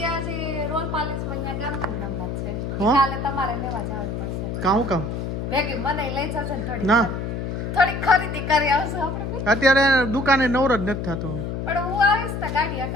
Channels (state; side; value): noise; left; hum, 4 dB below the sound